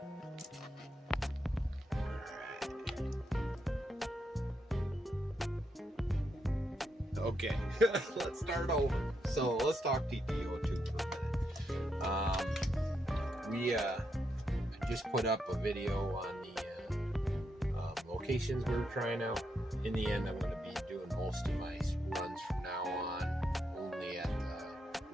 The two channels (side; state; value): both; normal; correlation 0.81